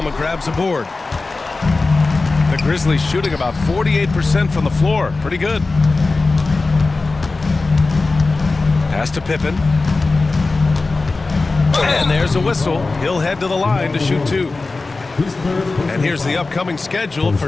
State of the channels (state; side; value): quieter; right; 3.6 dB